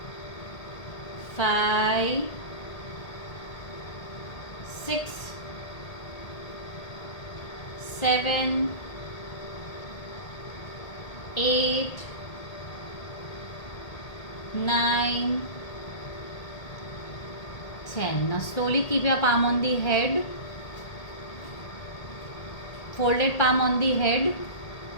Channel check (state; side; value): late; right; 1.8 ms